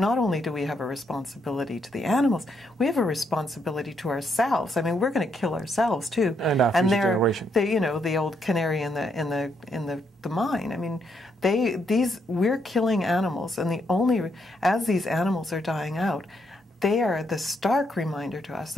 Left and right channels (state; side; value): normal; both; correlation 0.76